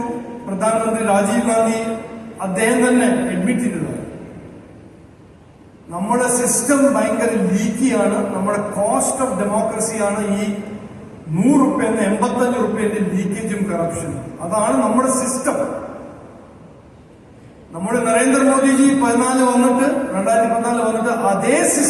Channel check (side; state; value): both; identical; correlation 1.00